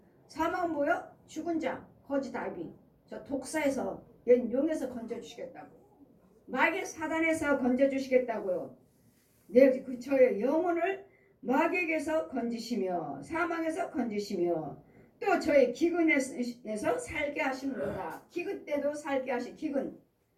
사망은 뭐요? 죽은 자, 거짓 아비, 저 독사에서, 옛 용에서 건져주시겠다고. 마귀 사단에서 건져주시겠다고요. 저의 영혼을 마귀에게서 건지시며 사망에서 건지시며 또 저의 기근에서 살게 하시는도다. 기근 때도 살게 하시. 기근.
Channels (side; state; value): both; identical; correlation 1.00